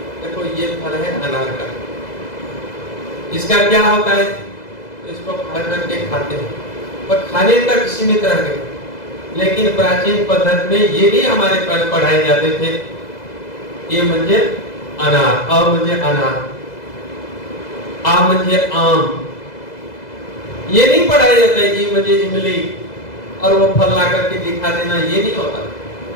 देखो ये फल है अनार का, इसका क्या होता है? इसको खा करके खाते हैं, पर खाने तक सीमित रह गए। लेकिन प्राचीन पद्धति में ये नहीं हमारे पढ़ाए जाते थे। ये म्हणजे अनार, अ म्हणजे अनार, आ म्हणजे आम, ये नहीं पढ़ाया जाता है। ई म्हणजे इमली और वो फल ला करके दिखा देना, ये नहीं होता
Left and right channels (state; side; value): late; right; 2.0 ms